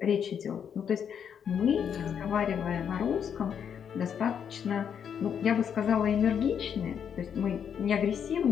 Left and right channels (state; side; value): quieter; right; 7.9 dB